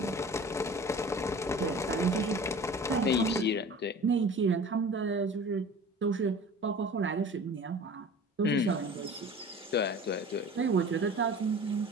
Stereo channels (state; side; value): normal; both; correlation 0.41